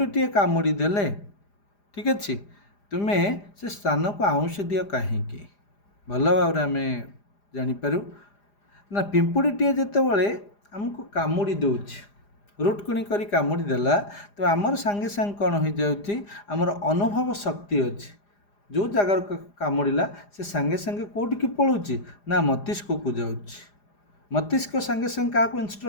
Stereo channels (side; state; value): right; late; 4.9 ms